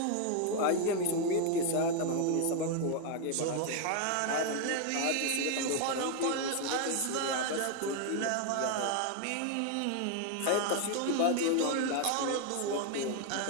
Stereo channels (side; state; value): both; different; correlation 0.01